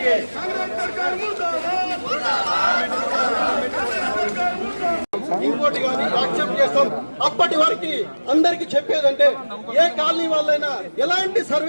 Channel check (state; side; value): inverted; both; correlation -1.00